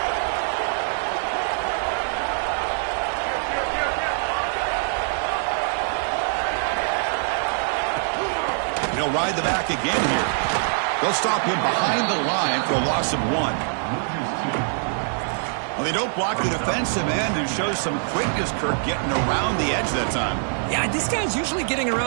He'll ride the back again here. They'll stop him behind the line for a loss of 1. Well, they don't block the defensive end and show some quickness, Kirk, getting around the edge that time. Yeah, this guy's usually getting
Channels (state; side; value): silent; left; 63 dB below the other